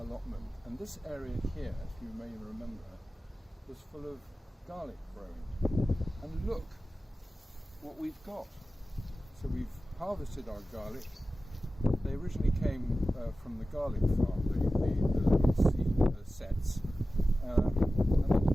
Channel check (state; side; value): normal; both; correlation 0.95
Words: allotment, and this area here, if you may remember, was full of garlic growing. And look what we've got. So we've harvested our garlic. They originally came from the garlic farm, the little seed sets, and they've